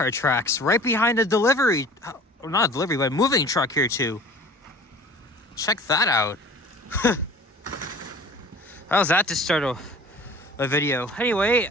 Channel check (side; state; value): both; normal; correlation 0.44